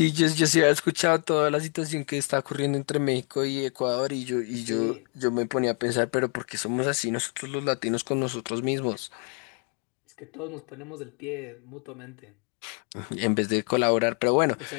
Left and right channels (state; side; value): quieter; right; 39.4 dB